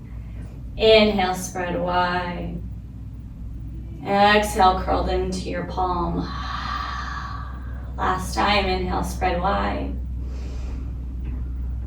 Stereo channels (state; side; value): identical; both; correlation 1.00